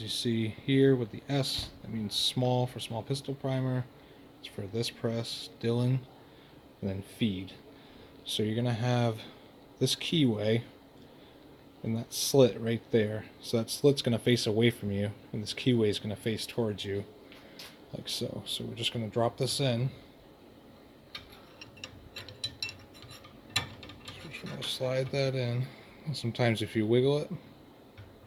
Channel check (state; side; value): identical; both; correlation 1.00